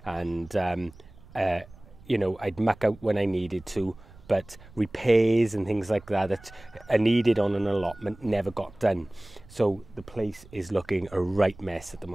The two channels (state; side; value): noise; right; rumble, 22 dB below the sound